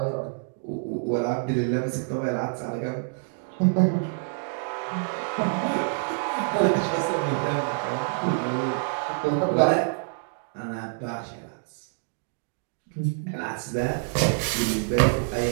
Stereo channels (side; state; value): left; silent; digital silence